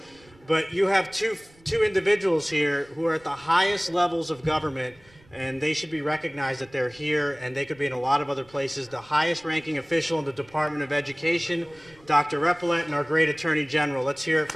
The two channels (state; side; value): noise; right; rumble, 28 dB below the sound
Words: But you have two individuals here who are at the highest levels of government, and they should be recognized that they're here, and they could be in a lot of other places. The highest ranking official in the Department of Education, Dr. Repillette, and our great Attorney General. Let's hear it